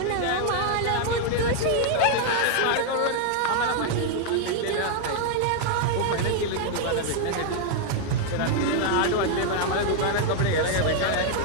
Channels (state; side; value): different; both; correlation 0.00